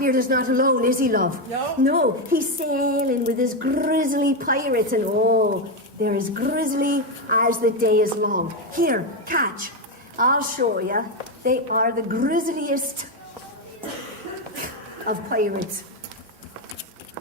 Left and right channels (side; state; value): both; normal; correlation 0.08